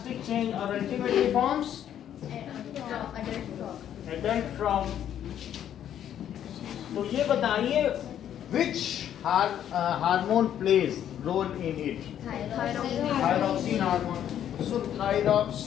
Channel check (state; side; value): quieter; right; 10.2 dB